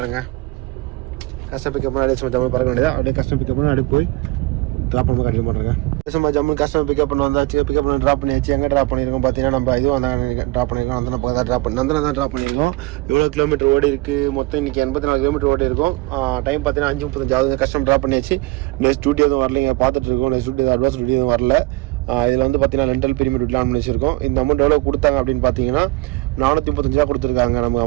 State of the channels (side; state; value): left; quieter; 21.2 dB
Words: கஸ்டமர் பிக்கப் பண்ணி அப்படியே சும்மா ஜம்மு பறக்க வேண்டியதா. அப்படியே கஸ்டமர் பிக்கப் பண்ணி அப்படியே போய் ட்ராப் பண்ண கண்டினியூ பண்ணுறேங்க. சும்மா ஜம்மு கஸ்டமர் பிக்கப் பண்ண வந்தாச்சு. பிக்கப் பண்ணி ட்ராப் பண்ணியாச்சு. எங்கே ட்ராப் பண்ணியிருக்கோம் பார்த்தீங்கன்னா நம்ம இதுவும் ட்ராப் பண்ணியிருக்கோம். அந்த பக்கம் தான் ட்ராப் பண்ணியிருக்கோம். எவ்வளோ கிலோமீட்டர் ஓடி இருக்குது மொத்தம் இன்றைக்கி 84 கிலோமீட்டர் ஓடி இருக்கும். டைம் பார்த்தீங்கன்னா 5:35 ஆகுது. கஸ்டமர் ட்ராப் பண்ணியாச்சு. நெக்ஸ்ட் டியூட்டி எதுவும் வரலைங்க, பார்த்துட்டு இருக்கோம். நெக்ஸ்ட் டியூட்டி அட்வான்ஸ் டியூட்டி எதுவும் வரல. இதில் வந்து பார்த்தீங்கன்னா ரெண்டல் பிரீமியம் டியூட்டில் ஆன் பண்ணி வச்சிருக்கோம். இந்த அமௌண்ட் எவ்வளோ கொடுத்தாங்க அப்படின்னு பார்த்தீங்கன்னா 435 ரூபா கொடுத்துருக்காங்க நமக்கு